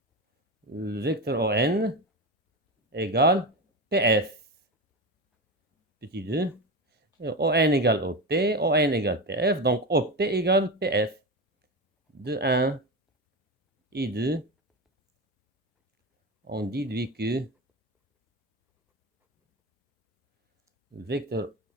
le vecteur ON égale PF. Petit 2. ON égale OP, ON égale PF, donc OP égale PF. De 1 et 2, on déduit que le vecteur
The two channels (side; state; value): both; normal; correlation 0.20